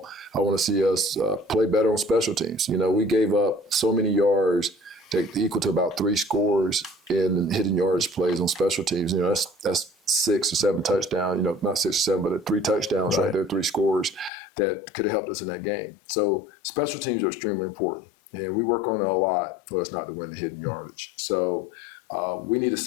I want to see us play better on special teams. We gave up so many yards that equal to about 3 scores in hidden yardage plays on special teams. That's 6 or 7 touchdowns, not 6 or 7, but 3 touchdowns right there, 3 scores that could have helped us in that game. So special teams are extremely important. And we work on it a lot for us not to win the hidden yardage. So we need to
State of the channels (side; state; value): right; drops out; at 14.3 s